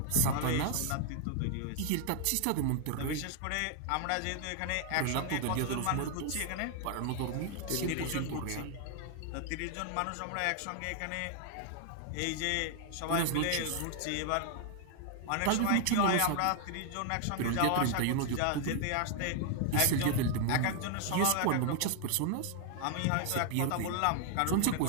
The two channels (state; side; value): different; both; correlation 0.00